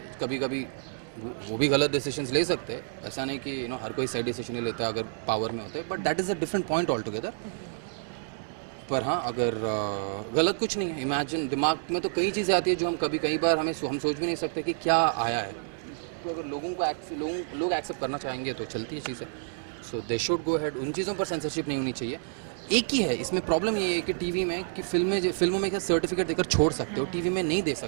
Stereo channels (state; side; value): silent; left; digital silence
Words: कभी कभी वो भी गलत डिसीजंस ले सकते हैं, ऐसा नहीं कि यू नो हर कोई सही डिसीजन नहीं लेता अगर पावर में होते हैं, but that is a different point all together. पर हाँ, अगर गलत कुछ नहीं है। इमेजिन दिमाग में तो कई चीज़ें आती है जो हम कई बार हम सोच भी नहीं सकते कि क्या आया है। तो अगर लोग एक्सेप्ट करना चाहेंगे तो चलती है चीज़ें। सो दे शुड गो अहेड। उन चीज़ों पर सेंसरशिप नहीं होनी चाहिए। एक ही है इसमें प्रॉब्लम, ये है कि टीवी में कि फिल्मों में क्या सर्टिफिकेट देकर छोड़ सकते हो, टीवी में नहीं दे